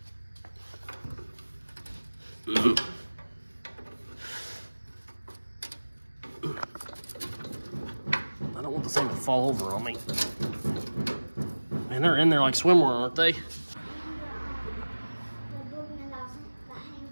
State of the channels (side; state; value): both; inverted; correlation -1.00